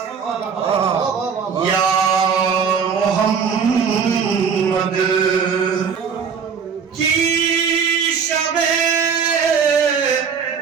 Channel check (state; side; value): quieter; left; 6.5 dB